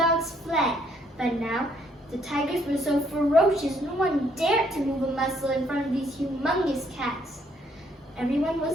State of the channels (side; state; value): both; normal; correlation 0.68